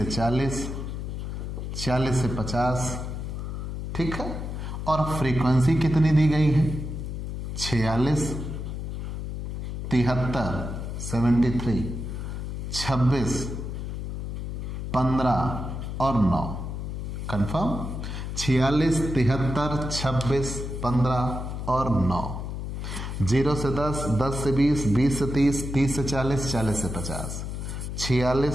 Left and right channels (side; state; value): left; noise; hum, 5 dB below the sound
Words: 40, 40 से 50, ठीक है। और फ्रीक्वेंसी कितनी दी गई है? 46, 73, 73, 26, 15 और 9। कंफर्म? 46, 73, 26, 15 और 9। 0 से 10, 10 से 20, 20 से 30, 30 से 40, 40 से 50,